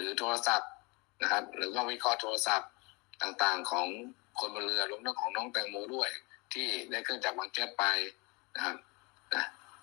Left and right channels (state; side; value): quieter; right; 27.7 dB